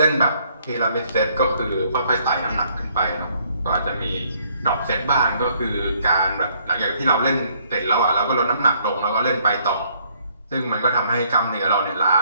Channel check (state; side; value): inverted; both; correlation -0.66